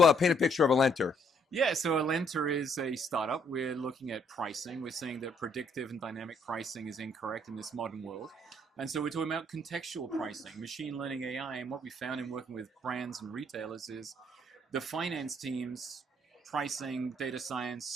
paint a picture of Alentr? Yeah, so Alentr is a startup. We're looking at pricing. We're saying that predictive and dynamic pricing is incorrect in this modern world. And so we're talking about contextual pricing, machine learning AI. And what we found in working with brands and retailers is the finance teams, pricing, data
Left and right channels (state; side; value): normal; both; correlation 0.67